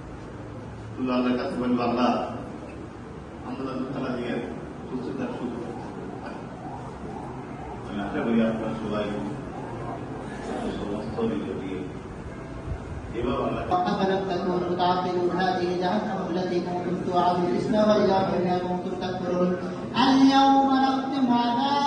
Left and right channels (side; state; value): both; identical; correlation 1.00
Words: শুধু আল্লাহর কাছে বলবো আল্লাহ আন্দোলন খেলা দিয়ে সুস্থতার সুযোগ। আমি আশা করি আপনার সবাই সমস্ত নিজে দিয়ে এভাবে আল্লাহ فلم تكونوا تعقلون هذه جهنم التي كنتم توعدون اصلوها بما كنتم تكفرون اليوم نختم على